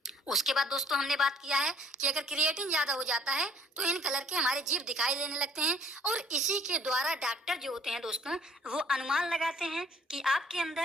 उसके बाद दोस्तों हमने बात किया है कि अगर क्रिएटिन ज्यादा हो जाता है तो इन कलर के हमारे जीभ दिखाई देने लगते हैं और इसी के द्वारा डॉक्टर जो होते हैं दोस्तों वो अनुमान लगाते हैं कि आपके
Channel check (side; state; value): both; normal; correlation 0.56